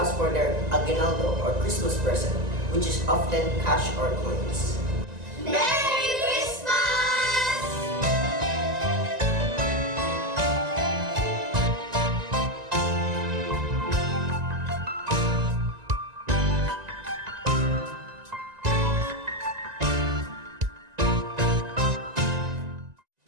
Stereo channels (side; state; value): left; late; 1.9 ms